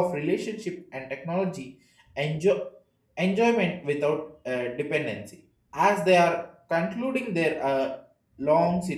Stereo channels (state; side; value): identical; both; correlation 1.00